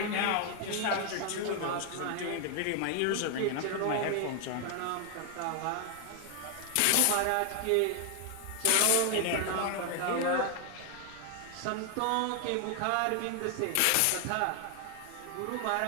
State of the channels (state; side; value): different; both; correlation 0.00